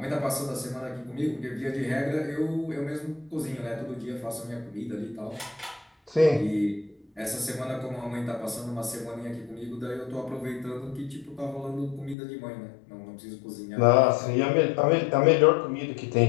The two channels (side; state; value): right; drops out; at 12.2 s